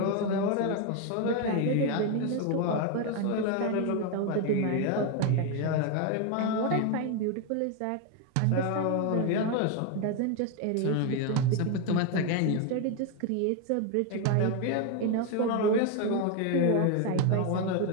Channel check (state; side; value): different; both; correlation 0.01